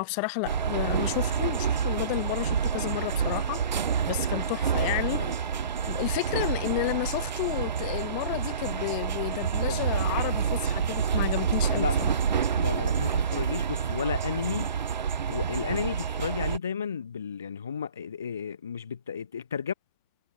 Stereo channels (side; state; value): both; inverted; correlation -0.43